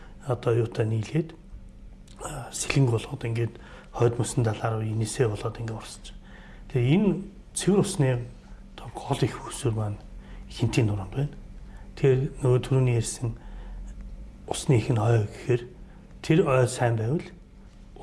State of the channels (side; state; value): both; identical; correlation 1.00